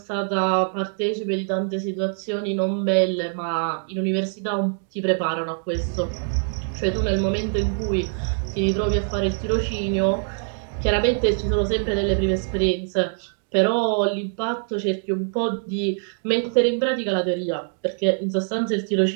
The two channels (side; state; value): left; silent; 63 dB below the other